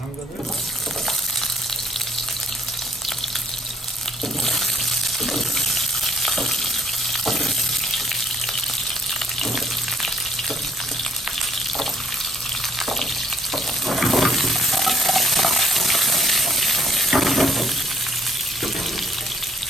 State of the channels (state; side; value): normal; both; correlation 0.63